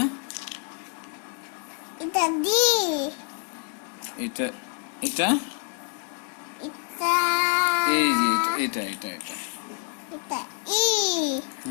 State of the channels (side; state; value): right; quieter; 38.3 dB